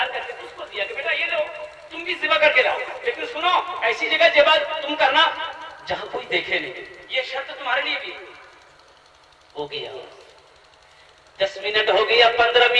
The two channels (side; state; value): both; identical; correlation 1.00